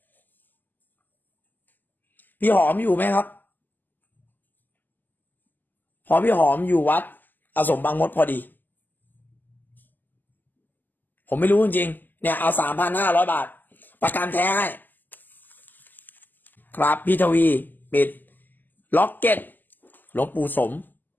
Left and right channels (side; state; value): right; late; 0.087 ms